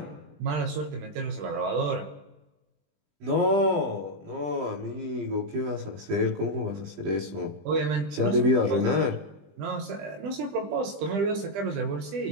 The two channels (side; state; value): left; late; 20 ms